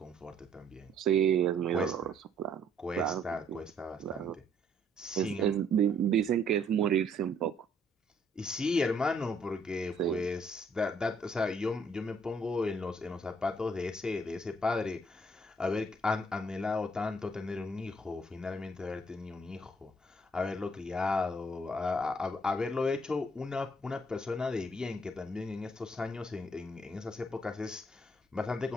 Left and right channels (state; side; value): normal; both; correlation 0.65